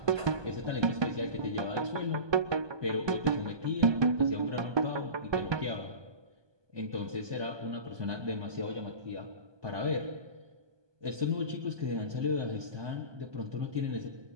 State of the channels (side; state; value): left; late; 1.2 ms